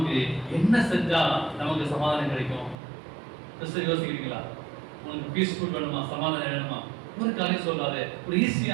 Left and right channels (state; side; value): drops out; left; at 2.8 s